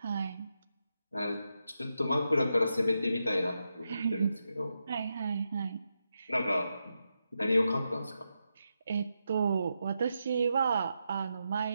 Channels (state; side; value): inverted; both; correlation -0.86